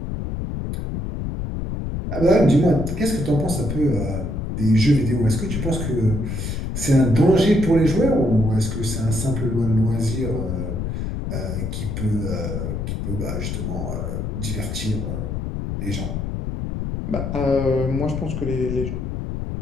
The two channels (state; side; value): noise; left; rumble, 3 dB below the sound